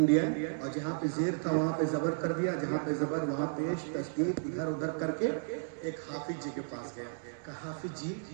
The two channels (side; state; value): left; silent; digital silence